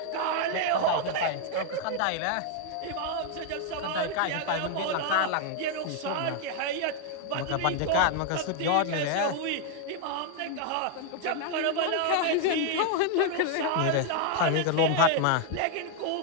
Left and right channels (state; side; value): different; both; correlation 0.01